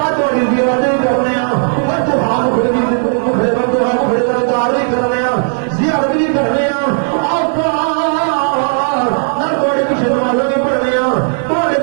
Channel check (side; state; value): left; silent; 68 dB below the other